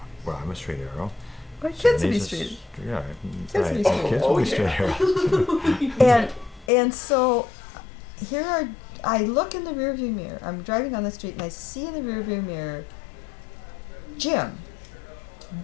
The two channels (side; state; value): right; drops out; at 6.7 s